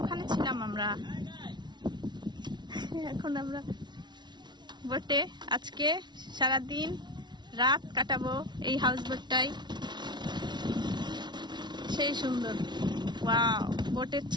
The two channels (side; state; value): left; late; 0.21 ms